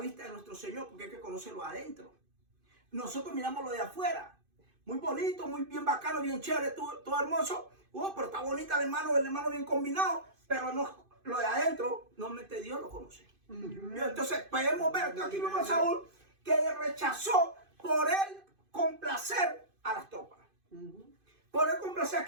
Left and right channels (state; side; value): late; left; 2.5 ms